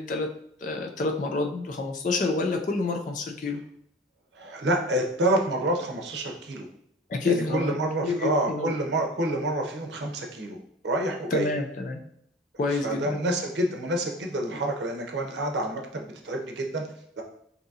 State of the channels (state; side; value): normal; both; correlation 0.36